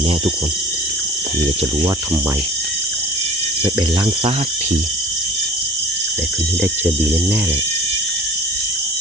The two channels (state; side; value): normal; both; correlation 0.42